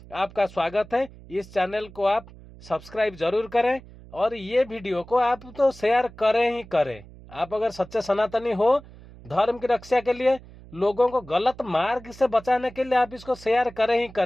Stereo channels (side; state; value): right; noise; hum, 20 dB below the sound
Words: आपका स्वागत है। इस चैनल को आप सब्सक्राइब जरूर करें और ये वीडियो को आप तो शेयर करें ही करें। आप अगर सच्चे सनातनी हो, धर्म की रक्षा के लिए, लोगों को गलत मार्ग से बचाने के लिए आप इसको शेयर करें ही